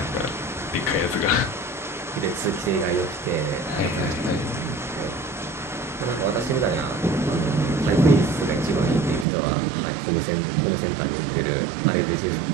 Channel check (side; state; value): left; drops out; at 9.2 s